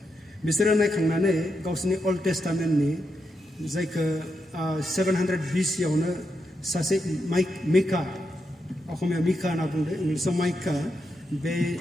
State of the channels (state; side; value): normal; both; correlation 0.84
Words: बिसोरो नायखांनानै गावसोरनि अल्ड टेस्टामेन्टनि जायखौ 700 BC-आवनो सासे मिका असमिया मिका होनना बुंदों इंलिसाव माइका बे